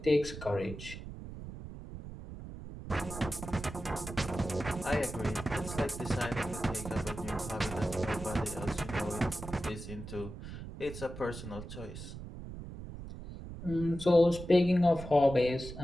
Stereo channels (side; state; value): right; noise; rumble, 11 dB below the sound